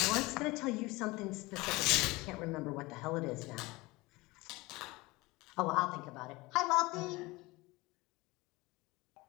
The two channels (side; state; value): right; quieter; 22.2 dB